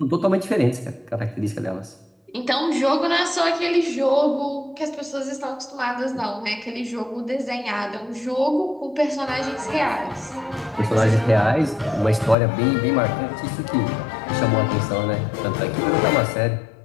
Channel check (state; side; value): drops out; right; at 12.4 s